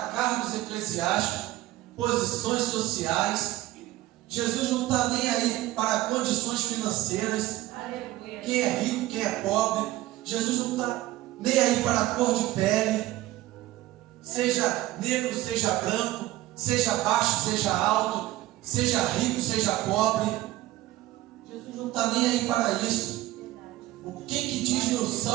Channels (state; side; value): quieter; left; 16.1 dB